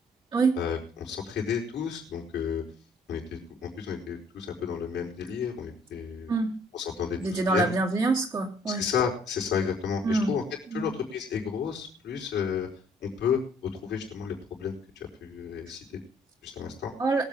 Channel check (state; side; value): normal; both; correlation 0.61